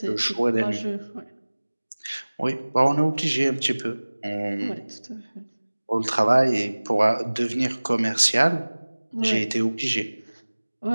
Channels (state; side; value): inverted; both; correlation -1.00